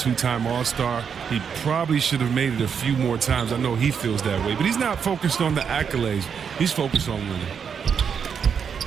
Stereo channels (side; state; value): left; quieter; 6.9 dB